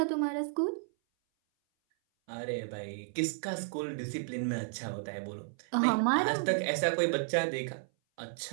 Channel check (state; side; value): silent; left; 56 dB below the other